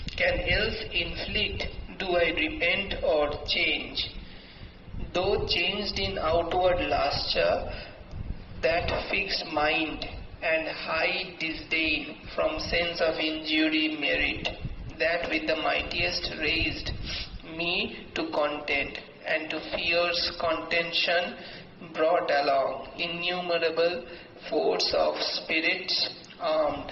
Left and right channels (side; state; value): both; identical; correlation 1.00